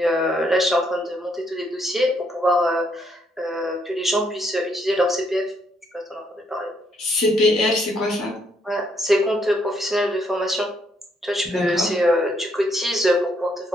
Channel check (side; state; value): both; normal; correlation 0.73